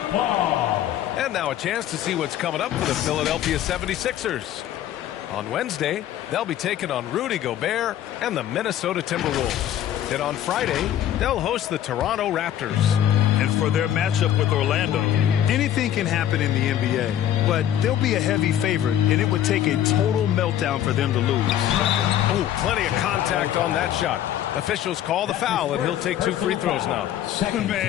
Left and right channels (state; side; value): quieter; right; 11.3 dB